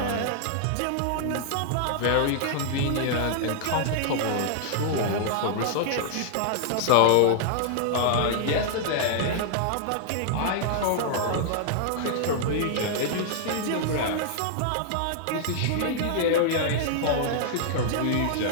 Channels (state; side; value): different; both; correlation -0.01